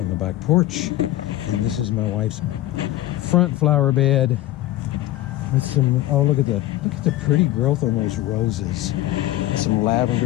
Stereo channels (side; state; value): right; quieter; 15.3 dB